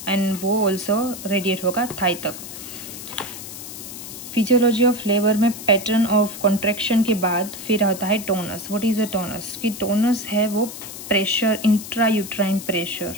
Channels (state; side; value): noise; left; hiss, 11 dB below the sound